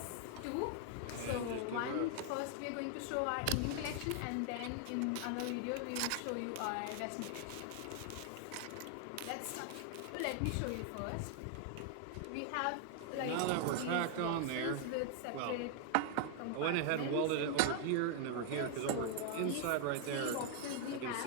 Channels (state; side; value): different; both; correlation 0.00